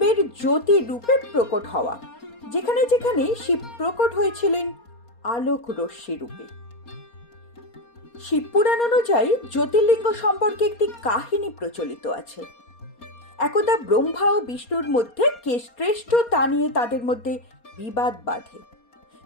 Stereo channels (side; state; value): right; late; 4.3 ms